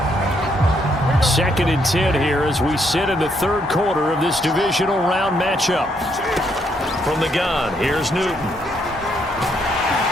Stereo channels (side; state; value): both; normal; correlation 0.74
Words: 2nd and 10 here as we sit in the 3rd quarter of this divisional round matchup. From the gun, here's Newton.